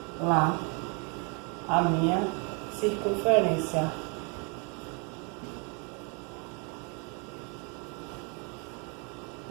lá, a minha circunferência.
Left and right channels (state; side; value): quieter; left; 34.8 dB